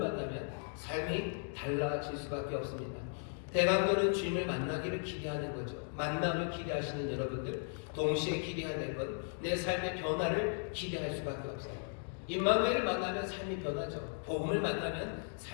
삶이 달라질 수밖에 없습니다. 대강도는 주님을 만나기를 기대하는 거죠. 만남을 기대하시는 여러분들, 동시에 기대해야 될 건 내 삶의 변화를 기대할 수밖에 없어요. 임마누엘을 만나면 삶이 변하죠. 복음을 만나면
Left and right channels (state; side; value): silent; right; 53 dB below the other